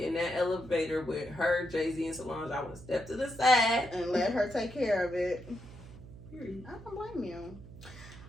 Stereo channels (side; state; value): right; noise; hum, 16 dB below the sound